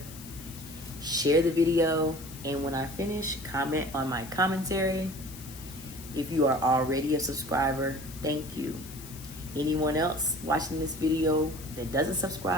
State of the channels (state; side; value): noise; left; hiss, 16 dB below the sound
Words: share the video, and when I finish, comment on my commentary. If you are already a subscriber, thank you. Anyone else watching this video that doesn't